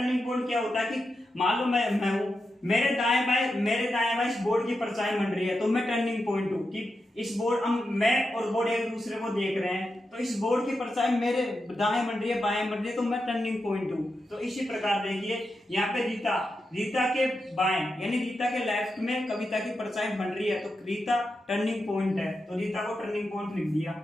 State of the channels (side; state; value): both; normal; correlation 0.88